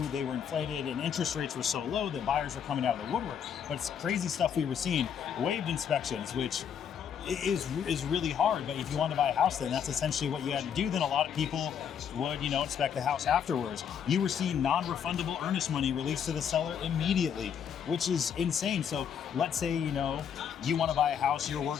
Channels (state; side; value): quieter; right; 8.0 dB